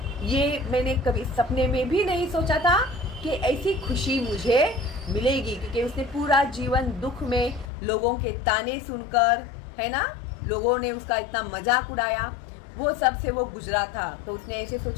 ये मैंने कभी सपने में भी नहीं सोचा था कि ऐसी खुशी मुझे मिलेगी, क्योंकि उसने पूरा जीवन दुख में लोगों के ताने सुनकर, है ना, लोगों ने उसका इतना मजाक उड़ाया, वो सब से वो गुजरा था। तो उसने ऐसे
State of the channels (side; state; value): right; drops out; at 7.7 s